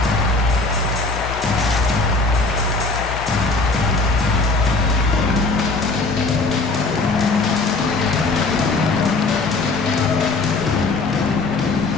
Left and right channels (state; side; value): quieter; right; 3.6 dB